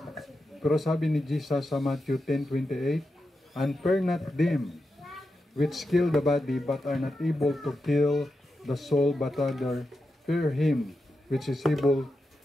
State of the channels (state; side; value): normal; both; correlation 0.89